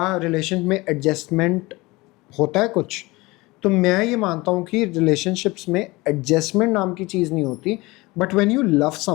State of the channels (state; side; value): quieter; right; 22.3 dB